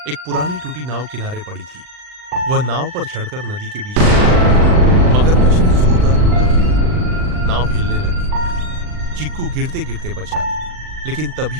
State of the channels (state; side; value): late; left; 39 ms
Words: एक पुरानी टूटी नाव किनारे पड़ी थी। वह नाव पर चढ़कर नदी के बीच में मगरमच्छ ने जोरदार हमला किया। नाव हिलने लगी। चीकू गिरते गिरते बचा, लेकिन